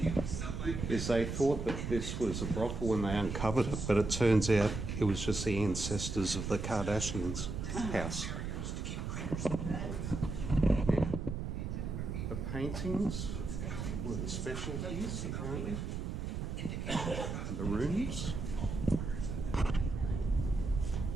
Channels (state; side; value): noise; right; rumble, 4 dB below the sound